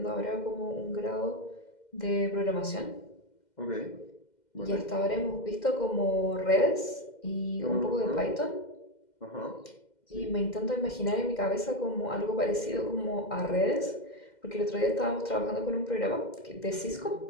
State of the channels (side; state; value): right; late; 2.1 ms